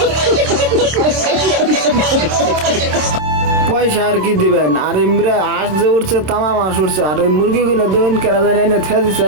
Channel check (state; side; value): late; left; 26 ms